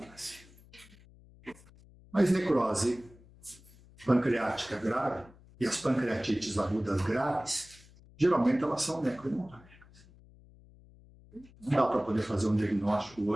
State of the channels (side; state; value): left; noise; hum, 24 dB below the sound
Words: Mas necrose pancreática grave e as pancreatites agudas graves, geralmente elas são necrohemorrágicas. Não dá para poder fazer um diagnóstico